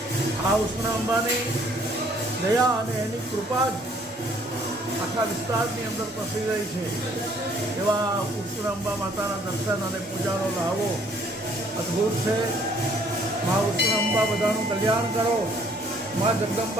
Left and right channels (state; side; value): normal; both; correlation 0.61